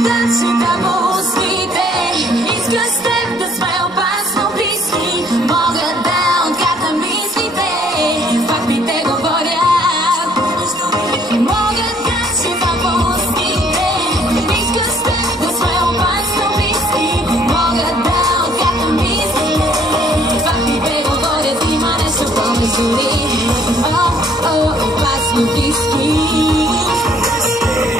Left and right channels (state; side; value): noise; right; rumble, 29 dB below the sound